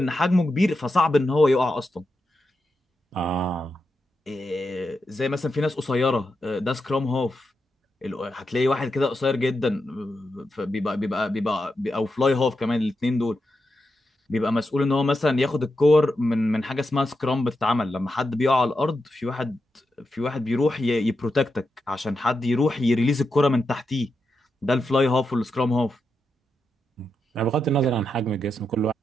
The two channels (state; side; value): normal; both; correlation 0.87